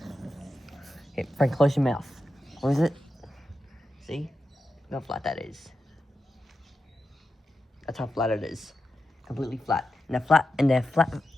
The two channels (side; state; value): both; normal; correlation 0.90